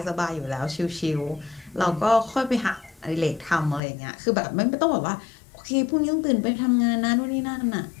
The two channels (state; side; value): drops out; right; at 3.8 s